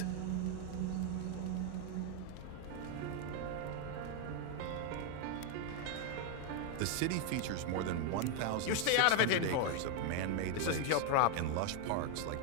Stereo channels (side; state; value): both; different; correlation 0.01